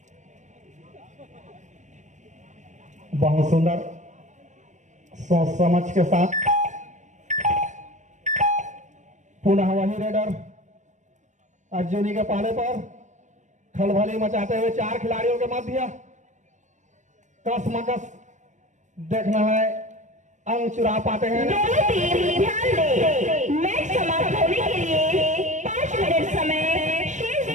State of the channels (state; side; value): late; left; 0.35 ms